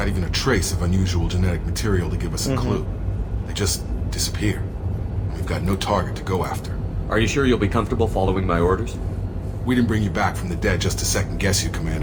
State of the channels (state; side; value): identical; both; correlation 1.00